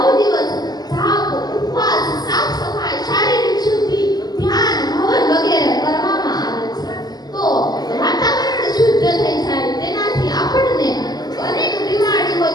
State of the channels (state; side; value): late; right; 0.20 ms